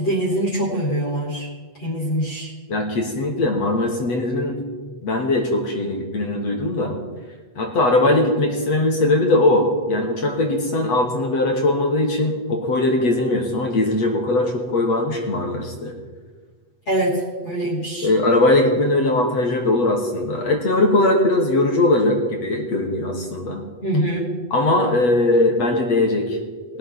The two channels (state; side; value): late; right; 8.2 ms